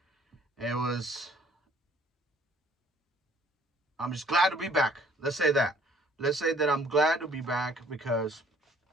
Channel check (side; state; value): both; normal; correlation 0.58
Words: it was. I'm just glad to be back. Let's say that. Let's say that I'm glad to be back because